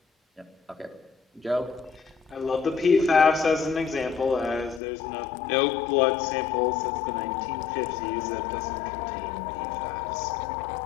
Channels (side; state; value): right; drops out; at 4.8 s